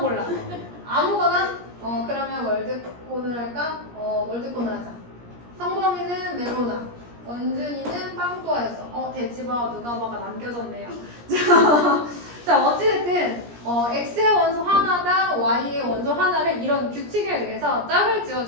아무거나. 그러면 월드콘을 할까? 월드콘을 하자. 성범이는 메로나. 원준이는 빵또아였어. 돼지바 누가 봐가 남겨졌네요. 자, 어찌됐든 x의 원소 하나당 y의 원소 하나를 이런 규칙에 의해서 짝을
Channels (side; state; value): left; late; 17 ms